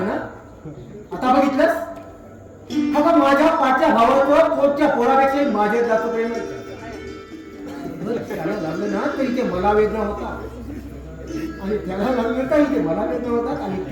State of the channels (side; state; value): both; identical; correlation 1.00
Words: ना. आता बघितलंस, हा माझ्या पाठच्या भावाचं पोटच्या पोरापेक्षा माझ्यात जास्त प्रेम आहे. जर त्याला लागलं ना तरी ते मला वेदना होता आणि त्याला लागलं तरी ते मला वेदना होतात आणि